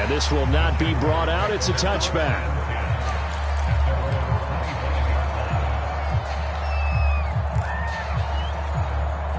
this will not be brought out. It's a touchback.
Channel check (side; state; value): both; identical; correlation 1.00